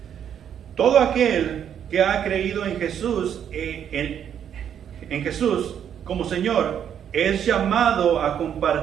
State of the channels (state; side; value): quieter; left; 9.0 dB